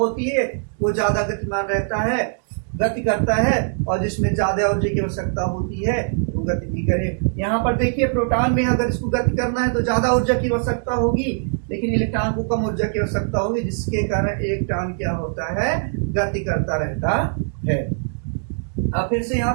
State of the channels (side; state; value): left; silent; digital silence